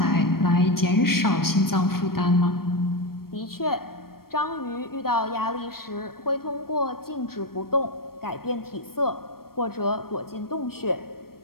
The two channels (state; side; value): late; right; 0.94 ms